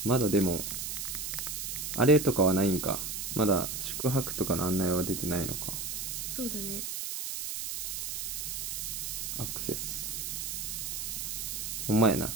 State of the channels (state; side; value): noise; right; hiss, 4 dB below the sound